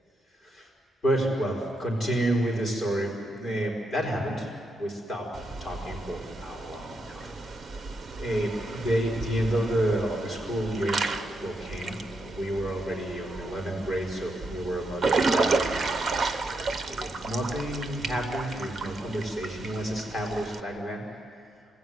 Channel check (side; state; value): both; normal; correlation 0.81